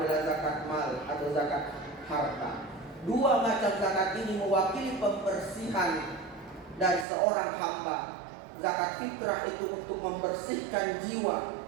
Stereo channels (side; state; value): left; drops out; at 7.1 s